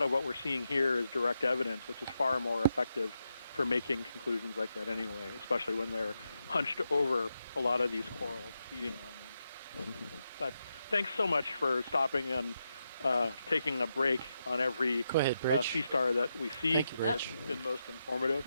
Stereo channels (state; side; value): inverted; both; correlation -0.85